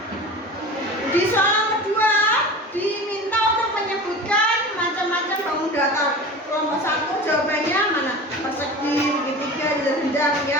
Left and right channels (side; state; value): both; normal; correlation 0.34